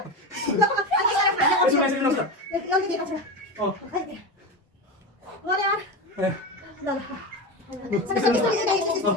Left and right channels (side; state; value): both; normal; correlation 0.20